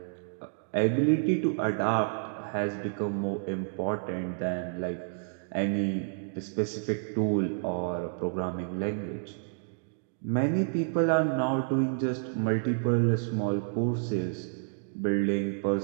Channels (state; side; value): silent; left; digital silence